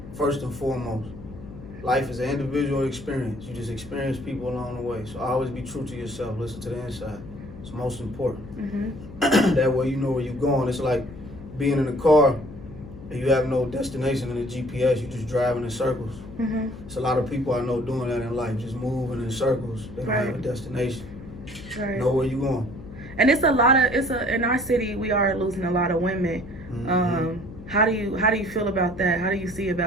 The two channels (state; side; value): noise; left; hum, 15 dB below the sound